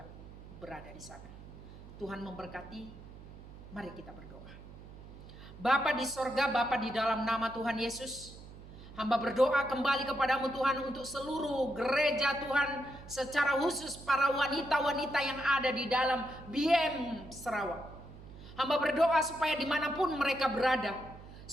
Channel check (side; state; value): right; noise; hum, 16 dB below the sound